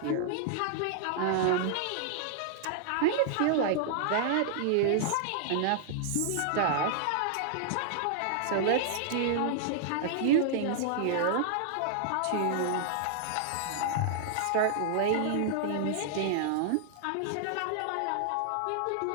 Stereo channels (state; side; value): different; both; correlation -0.01